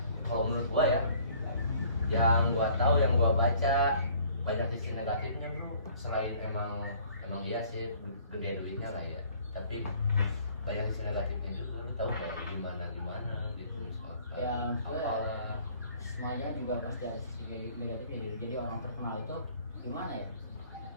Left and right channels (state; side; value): inverted; both; correlation -0.56